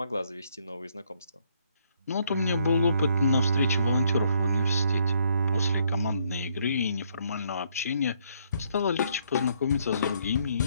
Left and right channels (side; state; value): both; inverted; correlation -0.69